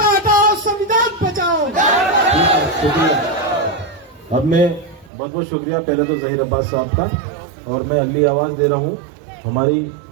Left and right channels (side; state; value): left; drops out; at 5.1 s